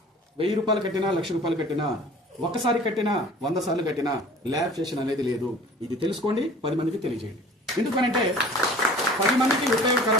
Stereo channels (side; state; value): both; normal; correlation 0.46